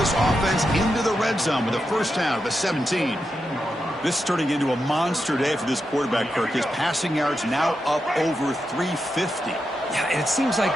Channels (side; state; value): both; normal; correlation 0.87